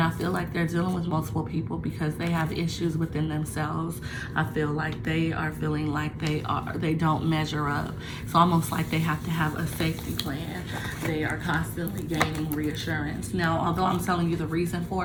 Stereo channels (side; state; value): both; identical; correlation 1.00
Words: I feel like they're dealing with multiple people because they have issues within themselves. I feel like they are feeling like they don't measure up. It's almost like they have to have a safety plan. They are constantly gaining reassurance. Now, although I'm telling you the reason